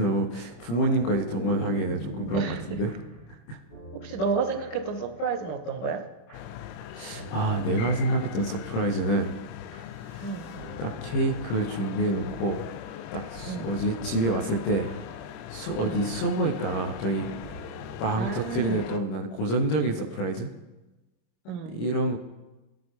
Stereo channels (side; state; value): right; late; 26 ms